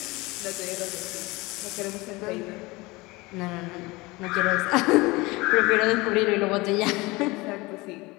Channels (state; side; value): quieter; right; 22.6 dB